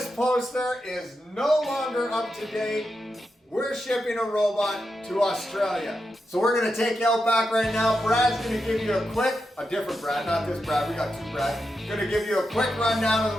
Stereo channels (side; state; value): both; normal; correlation 0.87